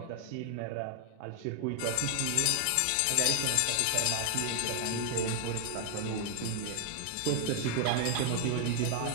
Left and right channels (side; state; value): both; different; correlation 0.00